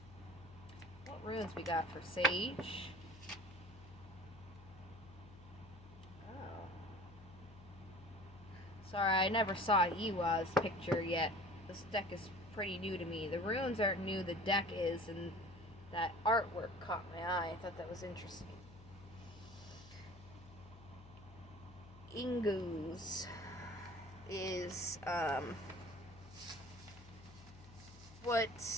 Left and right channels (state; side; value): noise; left; hum, 19 dB below the sound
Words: What runes we got for Sage? Oh. Sorry, I never saw Iwa's picture yet. This deck is pretty new to me. The runes aren't new, the deck is, and that artwork caught my eye. I thought that was interesting. Ingu's is what